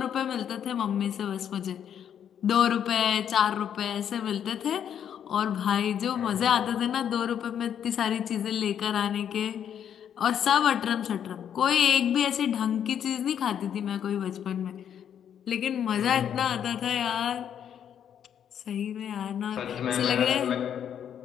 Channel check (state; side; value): quieter; right; 9.0 dB